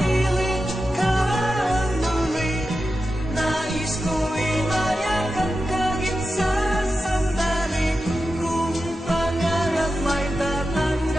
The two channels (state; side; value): normal; both; correlation 0.91